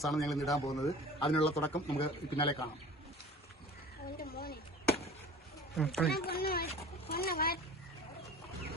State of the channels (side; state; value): both; normal; correlation 0.42